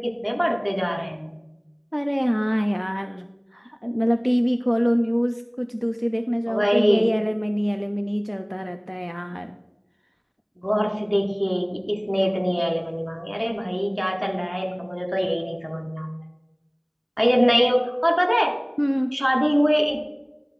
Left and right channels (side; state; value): both; identical; correlation 1.00